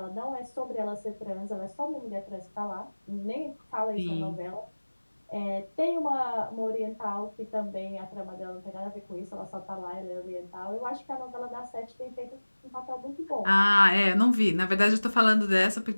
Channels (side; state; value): both; inverted; correlation -1.00